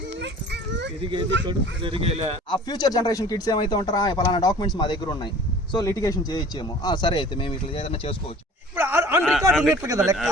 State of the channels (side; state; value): both; normal; correlation 0.46